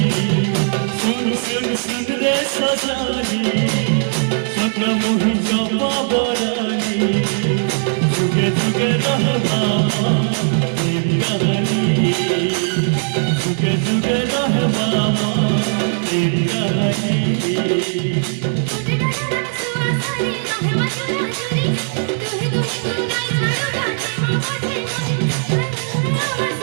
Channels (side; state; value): left; silent; 67 dB below the other